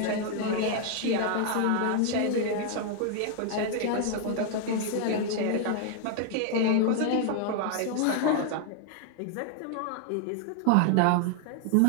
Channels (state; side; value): different; both; correlation 0.00